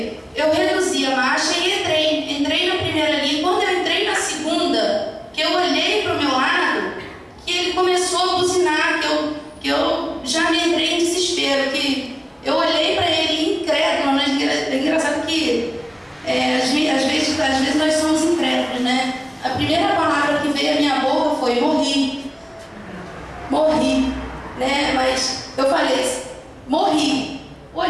eu reduzi a marcha e entrei na primeira linha. Quando eu entrei na segunda, que eu olhei para o meu lado, que ele começou a buzinar, que eu já me entrei em desespero, que eu olhei para ele incrédulo, né? É engraçado que às vezes nós somos incrédulos, né? A primeira palavra que veio à minha boca foi morri, né? Mas eu falei, morri.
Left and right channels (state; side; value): identical; both; correlation 1.00